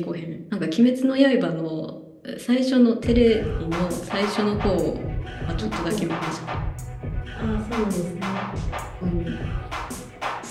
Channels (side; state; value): both; identical; correlation 1.00